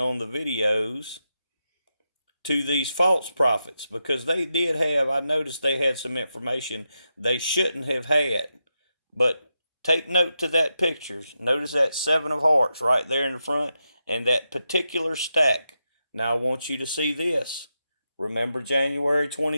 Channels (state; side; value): inverted; both; correlation -0.87